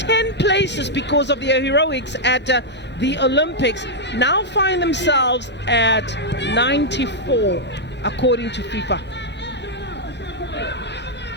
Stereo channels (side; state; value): both; normal; correlation -0.04